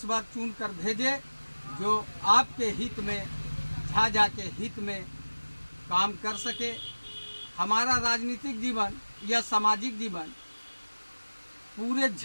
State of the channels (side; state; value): both; inverted; correlation -1.00